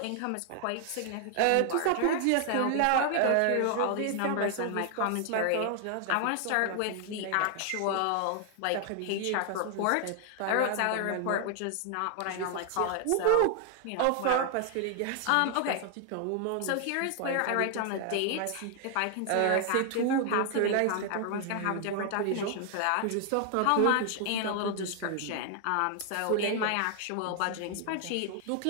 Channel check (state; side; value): different; both; correlation 0.00